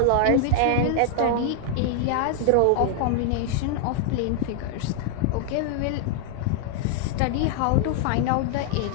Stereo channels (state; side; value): different; both; correlation 0.00